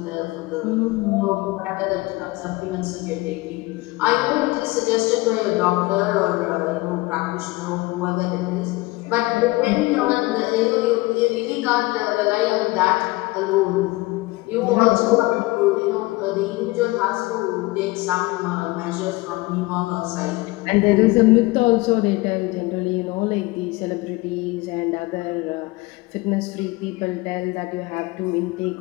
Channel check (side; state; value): right; quieter; 21.8 dB